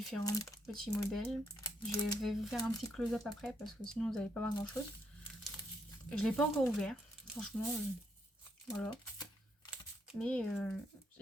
petits modèles. Je vais vous faire un petit close-up après parce que sinon vous n'allez pas voir grand chose. Je ne l'ai pas encore ouvert, franchement, voilà. Mais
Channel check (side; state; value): both; normal; correlation 0.76